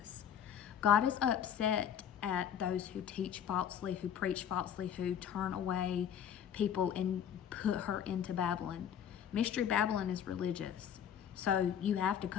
God is upset at those who teach falsely, who preach falsely, who turn away people and put her into Babylon. Mystery Babylon is religious. So you have to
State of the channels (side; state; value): right; quieter; 8.8 dB